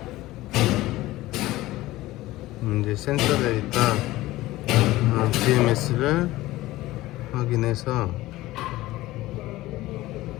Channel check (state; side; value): quieter; right; 17.5 dB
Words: 이제 센서 데이터 BMS를 확인해서